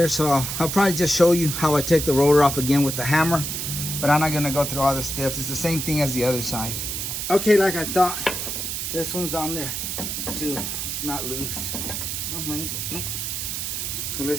so I'll probably just show you how I take the rotor off again with the hammer. But I'm not gonna go through all the steps. It's the same thing as the other side. Okay, like I thought, this one's on there too. It's not loose. Oh my. So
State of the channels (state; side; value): noise; right; hiss, 3 dB below the sound